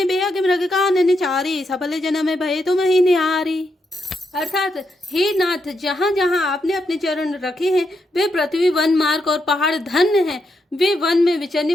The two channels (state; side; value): normal; both; correlation 0.81